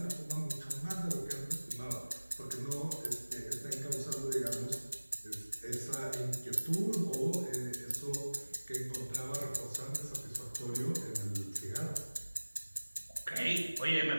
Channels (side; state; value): both; inverted; correlation -1.00